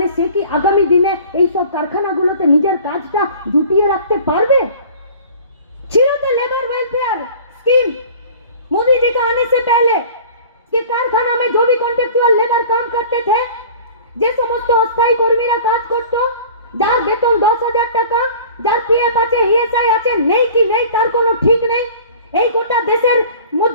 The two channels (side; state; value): both; inverted; correlation -0.44